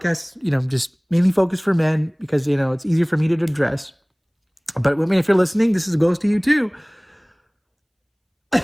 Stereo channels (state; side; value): identical; both; correlation 1.00